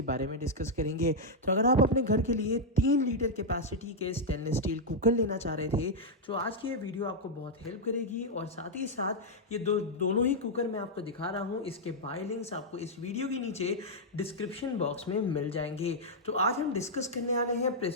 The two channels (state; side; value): normal; both; correlation -0.04